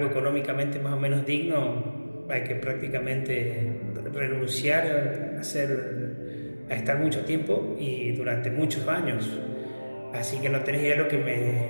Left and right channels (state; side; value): inverted; both; correlation -1.00